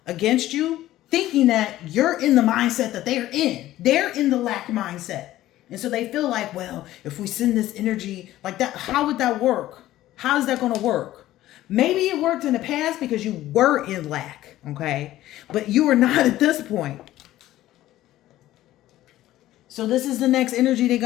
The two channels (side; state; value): right; quieter; 14.7 dB